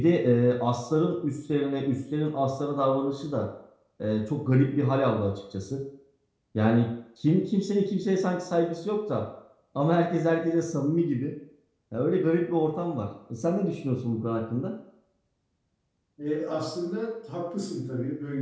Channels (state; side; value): identical; both; correlation 1.00